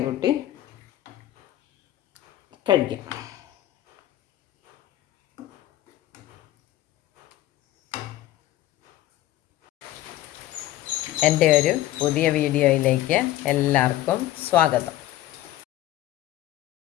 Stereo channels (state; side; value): quieter; right; 14.4 dB